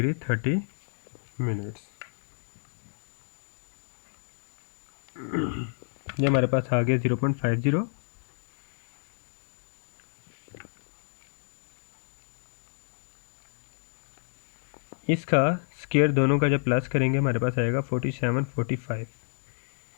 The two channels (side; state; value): right; silent; digital silence